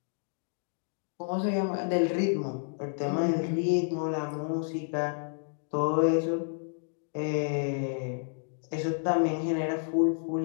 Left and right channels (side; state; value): right; silent; digital silence